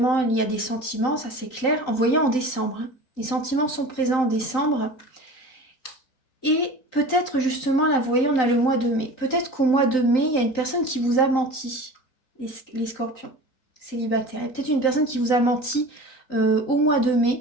il y a des sentiments, ça c'est clair. En voyant en décembre, hein. Les sentiments sont présents en décembre. Et peut-être justement, là, vous voyez, on a le mois de mai. Peut-être qu'au mois de mai, il y a une personne qui vous a menti, les scorpions célibataires. Il y a peut-être une personne qui vous a menti au mois de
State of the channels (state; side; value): late; right; 3.9 ms